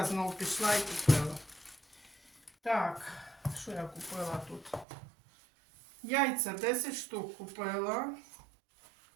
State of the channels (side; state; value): left; drops out; at 4.9 s